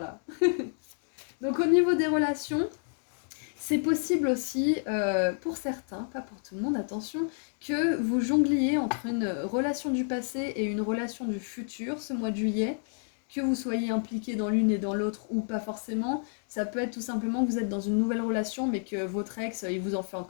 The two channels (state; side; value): silent; right; digital silence